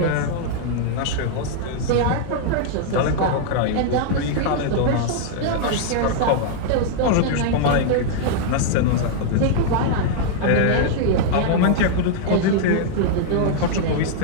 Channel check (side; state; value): both; different; correlation -0.01